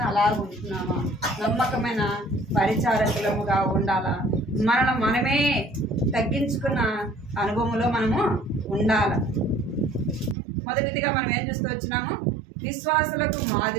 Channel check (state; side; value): drops out; left; at 10.4 s